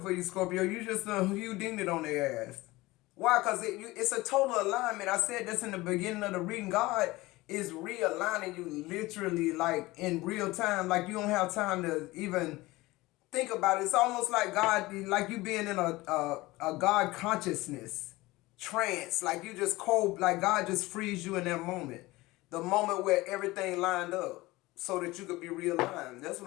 for you, Scorpio. You just you dinged it on their ass. Why? Because it's a total alignment. I said this in the beginning of the reading. God is realigning you literally, like, in real time. Like, you don't have time to even think about it. It's almost like God, like you being in a God consciousness trance. Like you just cold, like God just frees you in that moment. The moment where everything lined up so that you could be realigned. That's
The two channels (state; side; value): quieter; right; 20.0 dB